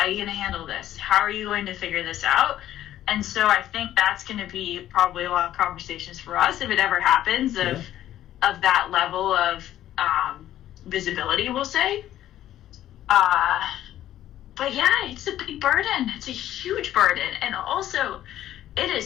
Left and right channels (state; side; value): quieter; right; 12.6 dB